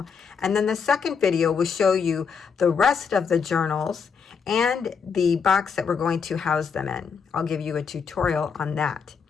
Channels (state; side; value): quieter; right; 6.0 dB